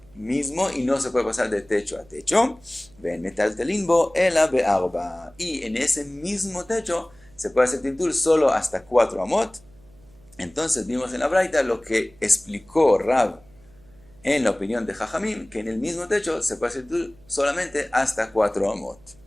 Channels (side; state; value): right; noise; hum, 27 dB below the sound